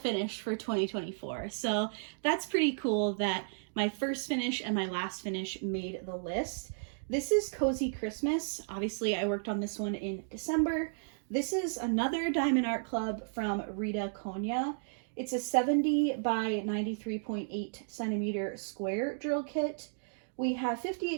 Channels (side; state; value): left; silent; digital silence